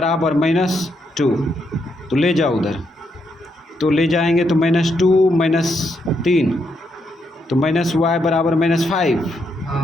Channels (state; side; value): normal; both; correlation 0.78